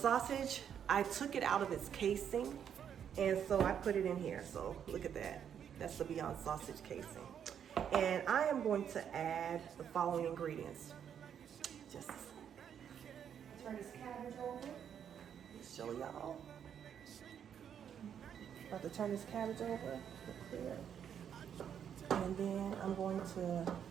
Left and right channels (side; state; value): left; quieter; 8.6 dB